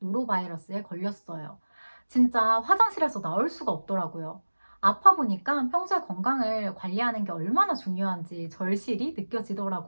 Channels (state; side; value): inverted; both; correlation -1.00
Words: 걸렸어요. 진짜 화장실에서 나올 수가 없더라고요. 아파 보니까 평소에 건강을 관리하는 게 얼마나 중요한지 절실히